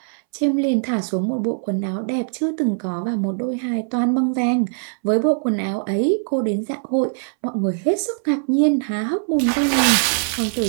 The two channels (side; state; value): left; silent; 63 dB below the other